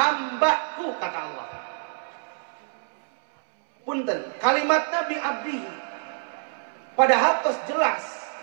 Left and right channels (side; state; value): left; silent; 61 dB below the other